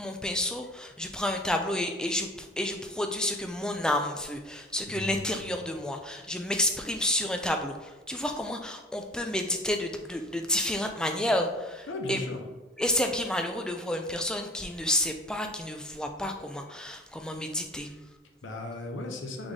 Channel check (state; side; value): normal; both; correlation 0.44